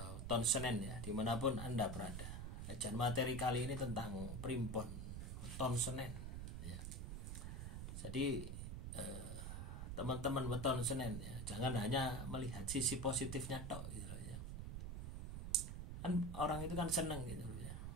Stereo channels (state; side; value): noise; right; rumble, 5 dB below the sound